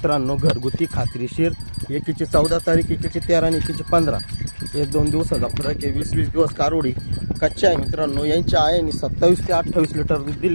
घरगुती खात्रीशीर. एकीची 14 तारीख, एकीची 13 आणि एकीची 15. 1-2 दिवसाचा फरक आहे. 20-20 दिवस कारोडी कच्च्या आहे मित्रांनो. यांच्या आईने 27 ते 28 लिटर दूध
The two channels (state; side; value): inverted; both; correlation -1.00